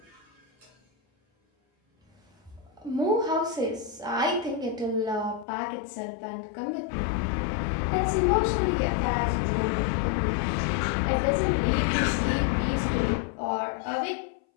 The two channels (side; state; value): right; drops out; at 5.5 s